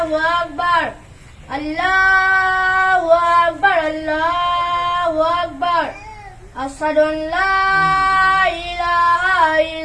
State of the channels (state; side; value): identical; both; correlation 1.00